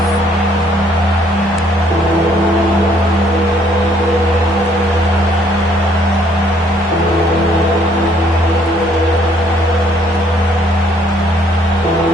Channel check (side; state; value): both; normal; correlation 0.64